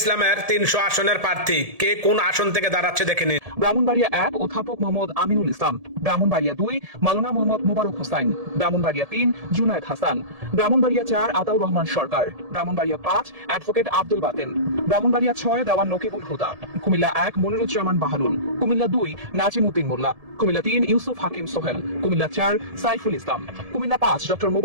৩০০ আসনের প্রার্থী কে কোন আসন থেকে দাঁড়াচ্ছে দেখে নিন। ব্রাহ্মণবাড়িয়া ১ অধ্যাপক মোহাম্মদ আমিনুল ইসলাম, ব্রাহ্মণবাড়িয়া ২ মাওলানা মোহাম্মদ মোবারক হোসাইন, ব্রাহ্মণবাড়িয়া ৩ জুনায়েদ হাসান, ব্রাহ্মণবাড়িয়া ৪ আতাউর রহমান সরকার, ব্রাহ্মণবাড়িয়া ৫ অ্যাডভোকেট আব্দুল বাতেন, ব্রাহ্মণবাড়িয়া ৬ দেওয়ান নকিবুল হুদা, কুমিল্লা ১ মনিরুজ্জামান বাহালুল, কুমিল্লা ২ নাজিম উদ্দিন মোল্লা, কুমিল্লা ৩ ইউসুফ হাকিম সোহেল, কুমিল্লা ৪ সাইফুল ইসলাম, কুমিল্লা ৫ ডক্টর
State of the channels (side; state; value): left; late; 1.7 ms